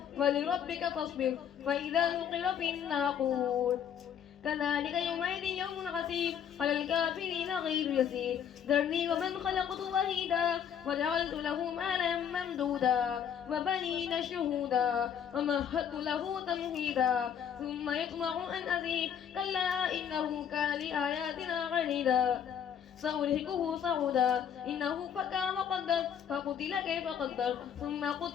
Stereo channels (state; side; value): quieter; right; 8.5 dB